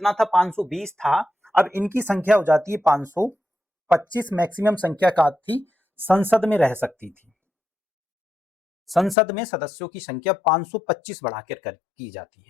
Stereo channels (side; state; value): right; drops out; at 9.2 s